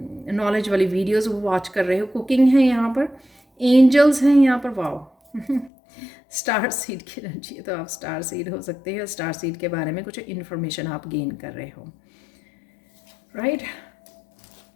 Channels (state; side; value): drops out; right; at 5.7 s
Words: नॉलेज वाली वीडियोस वॉच कर रहे हो, कुकिंग है यहाँ पर, एंजल्स हैं यहाँ पर, वाओ स्टार सीड की एनर्जी है, तो आप स्टार सीड हो सकते हैं, स्टार सीड के बारे में कुछ इन्फॉर्मेशन आप गेन कर रहे हो, राइट।